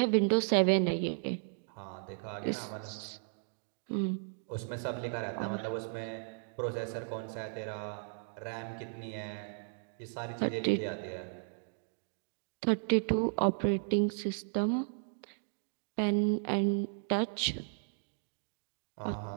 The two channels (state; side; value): silent; left; digital silence